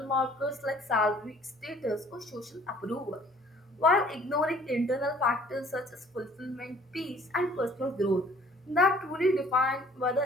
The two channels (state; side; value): normal; both; correlation 0.55